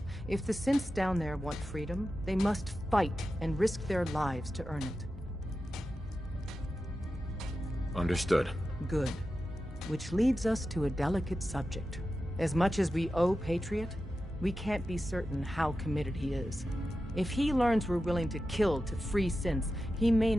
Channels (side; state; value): both; normal; correlation 0.92